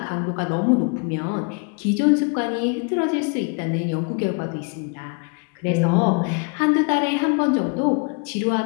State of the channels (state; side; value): quieter; right; 35.9 dB